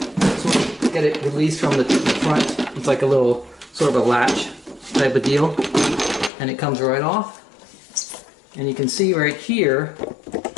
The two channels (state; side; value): drops out; right; at 6.3 s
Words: sort of get it released from the front. It's like a little sort of a latch type of deal, and it comes right off. And you can see right here,